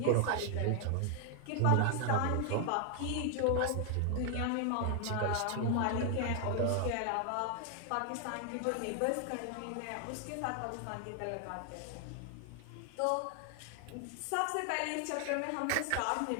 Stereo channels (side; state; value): both; different; correlation 0.00